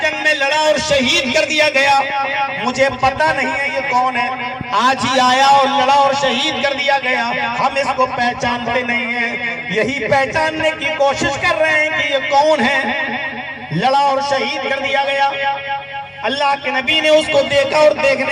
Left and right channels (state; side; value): identical; both; correlation 1.00